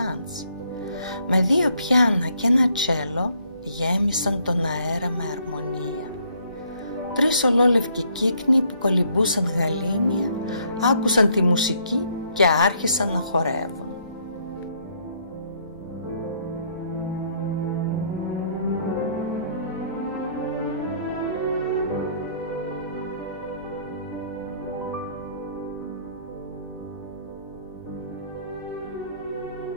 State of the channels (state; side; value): inverted; both; correlation -0.67